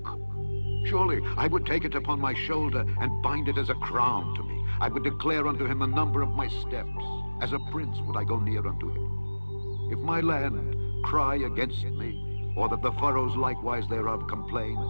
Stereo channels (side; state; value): both; inverted; correlation -1.00